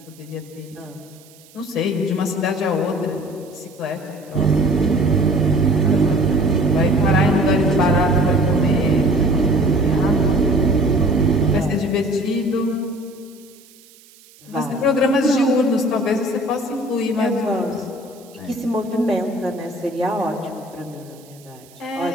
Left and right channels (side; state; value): right; noise; hiss, 26 dB below the sound